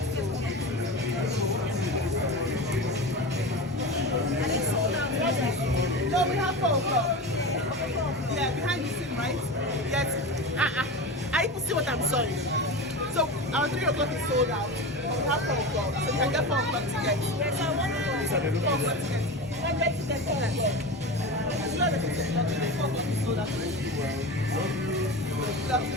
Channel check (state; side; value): normal; both; correlation 0.26